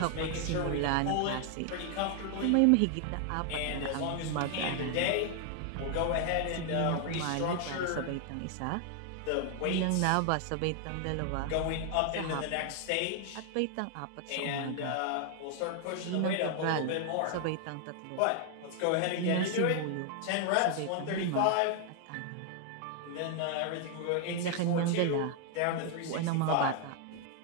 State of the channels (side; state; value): both; different; correlation 0.00